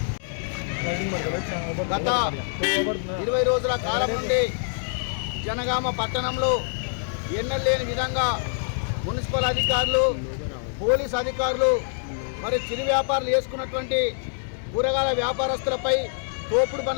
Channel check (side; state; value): right; silent; digital silence